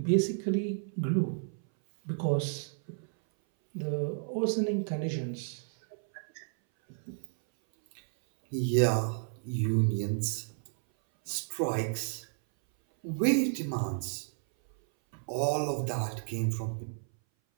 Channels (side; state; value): left; silent; 57 dB below the other